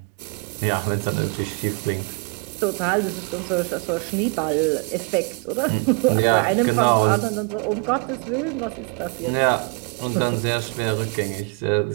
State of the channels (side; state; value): left; quieter; 33.1 dB